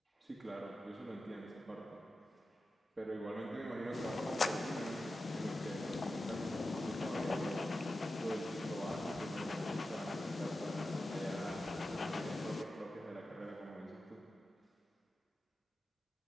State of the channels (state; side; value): normal; both; correlation 0.92